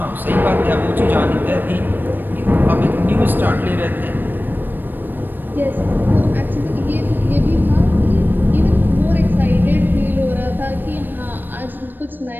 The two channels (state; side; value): late; left; 0.093 ms